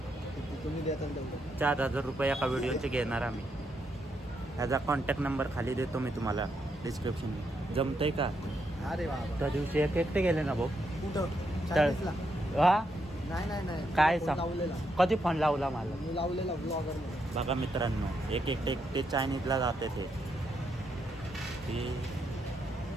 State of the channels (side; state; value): both; normal; correlation 0.79